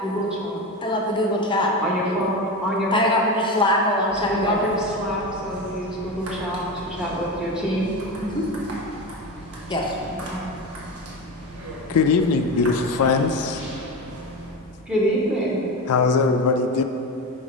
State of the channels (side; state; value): both; normal; correlation 0.22